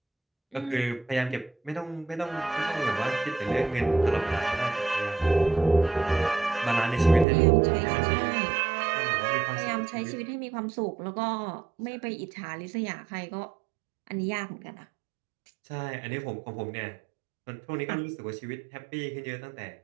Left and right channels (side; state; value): left; drops out; at 7.2 s